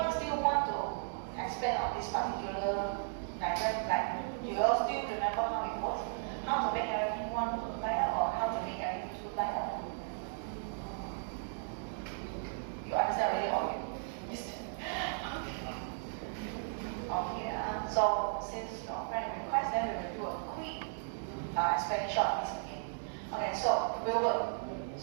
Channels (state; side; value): silent; left; digital silence